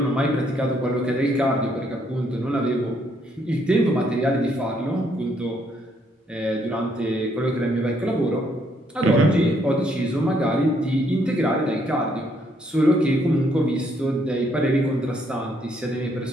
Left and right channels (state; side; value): normal; both; correlation 0.71